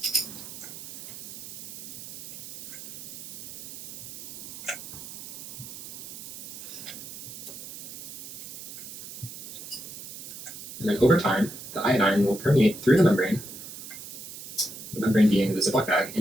And then over time, the iodine will permeate through the membrane being the Ziploc bag,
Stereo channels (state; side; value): noise; right; hiss, 12 dB below the sound